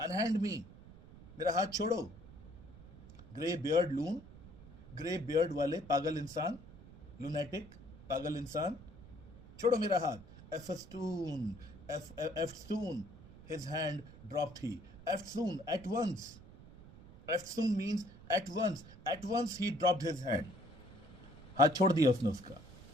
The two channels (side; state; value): right; noise; rumble, 18 dB below the sound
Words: me, मेरा हाथ छोड़ो. ग्रे बियर्ड लून, ग्रे बियर्ड वाले पागल इंसान, लूनेटिक पागल इंसान, छोड़ो मेरा हाथ. Eftsoon, his hand dropped he. Eftsoon, at once. Eftsoon means at once. At once he dropped his hand. हाथ छोड़ दिया उसने उसका.